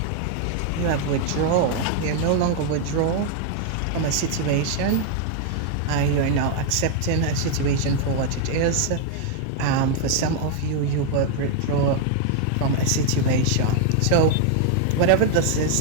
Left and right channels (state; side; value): different; both; correlation 0.00